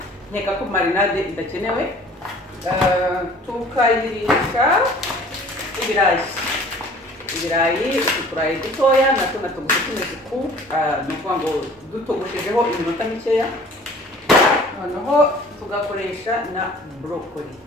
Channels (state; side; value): normal; both; correlation 0.49